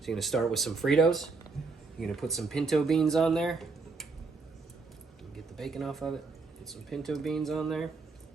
you're gonna start with some Fritos. You're gonna put some pinto beans on there. Get the bacon off of it. Put some pinto beans on there,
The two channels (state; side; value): quieter; left; 4.2 dB